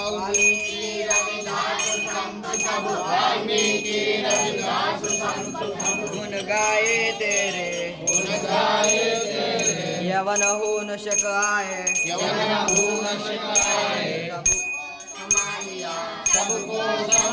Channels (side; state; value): both; identical; correlation 1.00